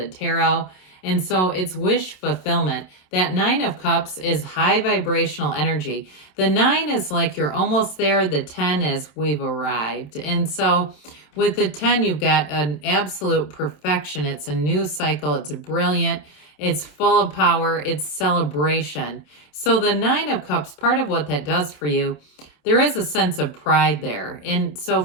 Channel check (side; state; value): right; late; 27 ms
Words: tarot. And so it's wish fulfillment. That 9 of cups is high vibrational energy. The 9 is like you're almost there. The 10 is we've arrived. And so with the 10, you've got an absolute perfection. It's a new cycle. It's brilliant. It's full of power. It's celebration. So the 9 of cups, part of what that does for you, there is a sense of pride there. And so